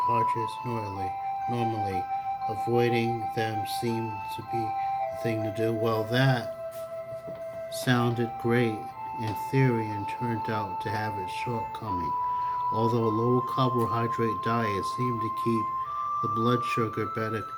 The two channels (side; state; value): both; identical; correlation 1.00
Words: normally. Avoiding them seemed to be the thing to do. Well, that sounded great in theory and turned out to have its shortcomings. Although a low carbohydrate diet seemed to keep the blood sugar